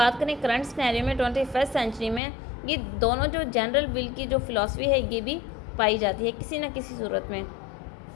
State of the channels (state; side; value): drops out; right; at 2.2 s